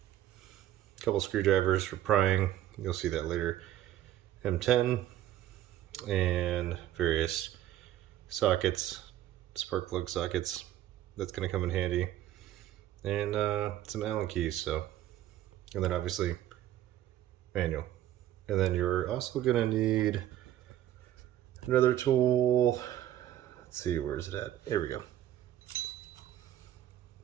a couple screwdrivers for prying, you'll see that later, M10, and various sockets, spark plug sockets, that's going to come in handy, and some Allen keys. So, and then obviously manual, and then you're also going to need another tool. Let's see, where is it at? Here we go.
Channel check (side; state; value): left; quieter; 12.8 dB